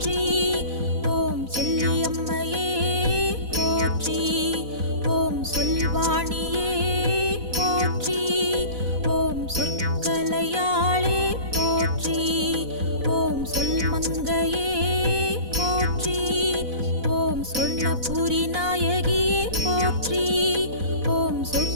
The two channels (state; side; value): late; left; 4.0 ms